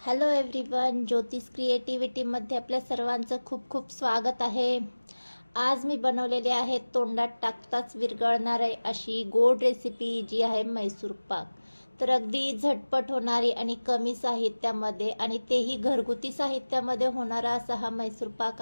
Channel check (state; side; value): inverted; both; correlation -1.00